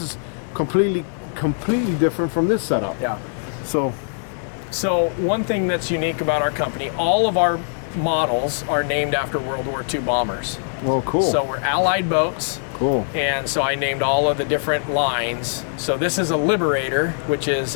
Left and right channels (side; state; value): right; silent; digital silence